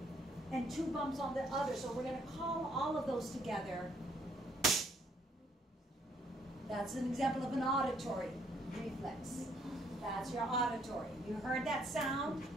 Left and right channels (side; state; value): both; normal; correlation 0.68